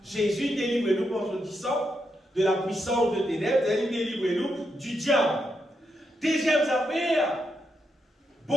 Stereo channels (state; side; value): normal; both; correlation 0.82